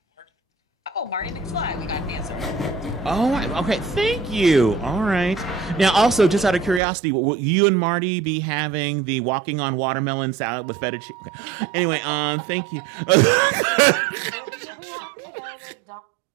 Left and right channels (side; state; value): left; drops out; at 6.8 s